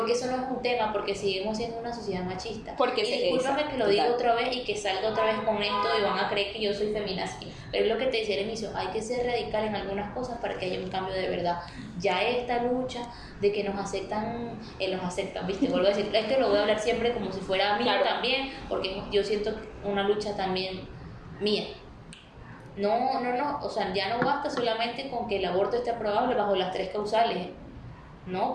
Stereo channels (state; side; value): identical; both; correlation 1.00